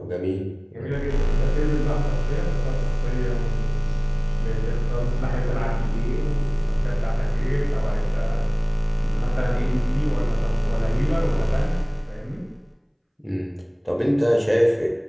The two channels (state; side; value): identical; both; correlation 1.00